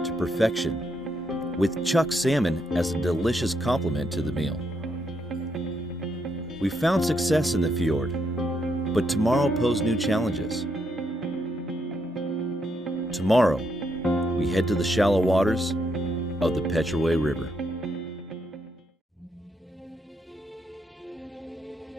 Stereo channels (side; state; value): both; normal; correlation 0.78